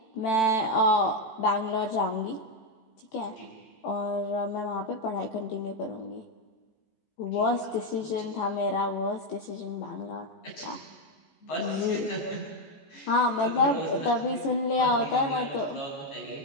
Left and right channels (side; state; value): right; late; 14 ms